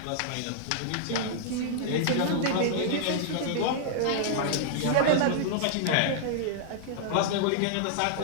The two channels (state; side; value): different; both; correlation -0.01